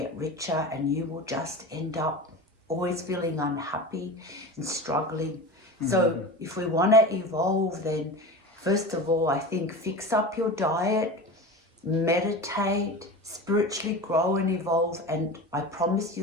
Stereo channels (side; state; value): both; normal; correlation 0.30